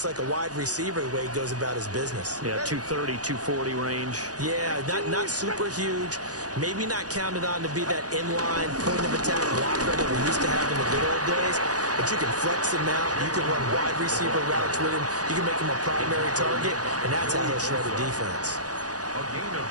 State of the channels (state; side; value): late; left; 0.68 ms